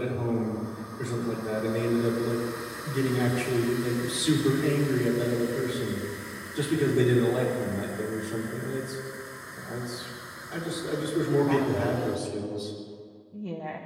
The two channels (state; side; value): identical; both; correlation 1.00